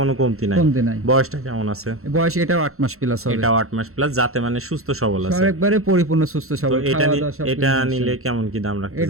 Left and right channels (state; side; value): late; left; 0.63 ms